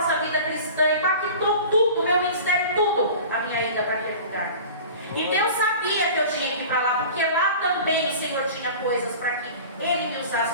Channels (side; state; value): both; inverted; correlation -0.39